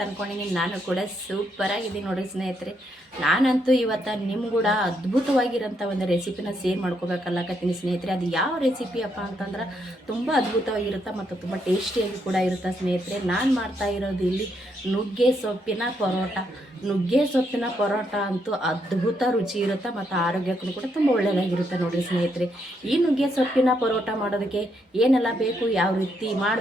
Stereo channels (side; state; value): both; normal; correlation 0.77